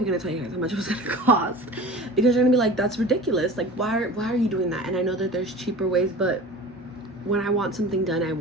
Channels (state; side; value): normal; both; correlation 0.37